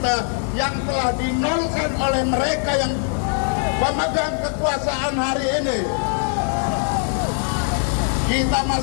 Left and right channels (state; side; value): silent; right; 56 dB below the other